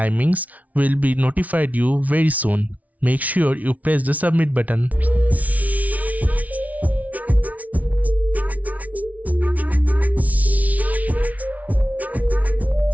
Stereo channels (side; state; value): left; late; 0.071 ms